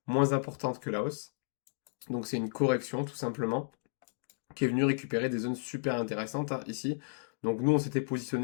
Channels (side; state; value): right; silent; digital silence